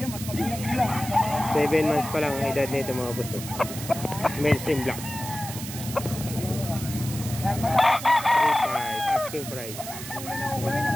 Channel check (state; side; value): noise; right; hiss, 10 dB below the sound